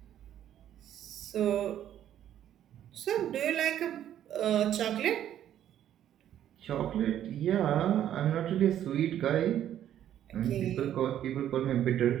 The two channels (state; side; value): quieter; left; 11.0 dB